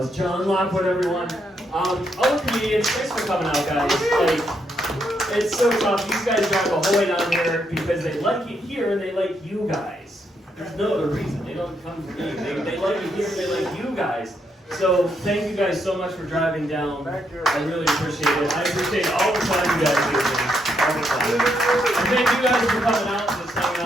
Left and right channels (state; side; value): normal; both; correlation 0.77